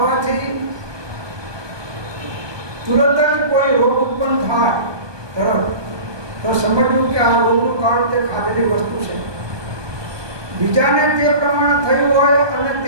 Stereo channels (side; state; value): left; late; 1.2 ms